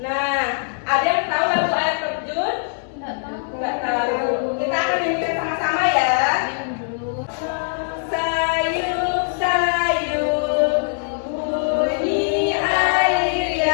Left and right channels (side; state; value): right; silent; digital silence